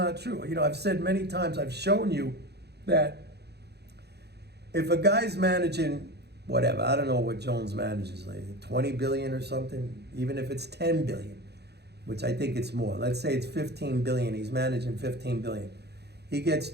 true. I've said many times, I've shown you that if a guy's managing whatever, I don't know what Jones manages, like 20 billion or something, even if it's 10 billion, which I think it's more. Let's say it's 15 billion. He's managing 15 billion. He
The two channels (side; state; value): left; late; 0.48 ms